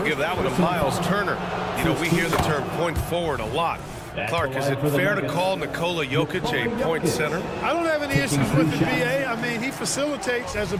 give that one to Miles Turner. You know, we hear the term point forward a lot. Clark, is it fair to call Nikola Jokic a point center? I don't have any issues with the BA. I mean, he facilitates as a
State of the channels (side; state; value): both; identical; correlation 1.00